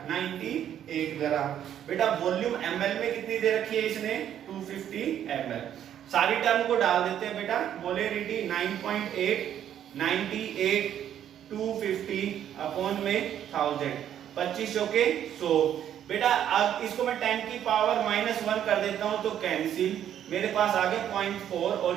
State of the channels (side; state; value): left; quieter; 10.3 dB